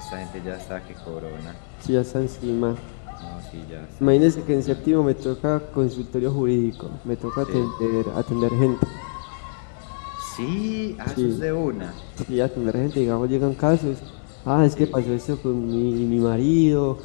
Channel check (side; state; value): right; silent; digital silence